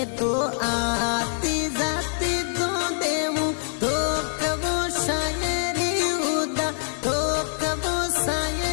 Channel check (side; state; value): right; silent; 62 dB below the other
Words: तो आती जाती दो देवूं तो कबो शायरी उदा, तो कबो